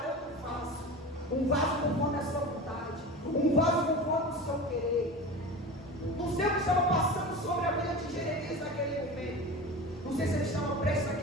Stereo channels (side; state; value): both; normal; correlation 0.31